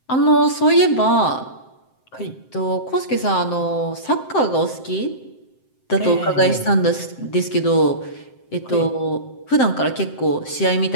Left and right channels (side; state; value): right; late; 7.7 ms